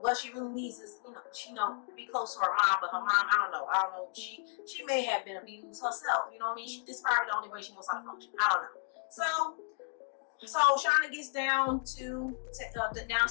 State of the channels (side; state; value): right; silent; 55 dB below the other